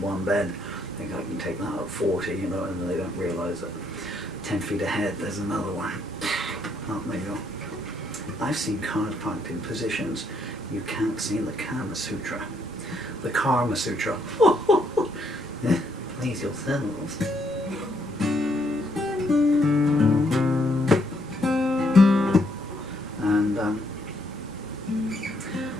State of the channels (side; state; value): both; normal; correlation 0.73